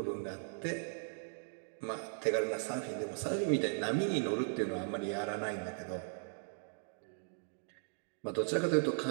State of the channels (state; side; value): silent; left; digital silence